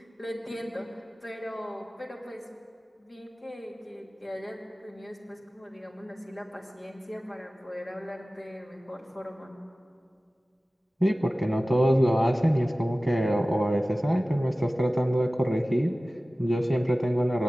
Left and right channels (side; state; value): both; normal; correlation 0.97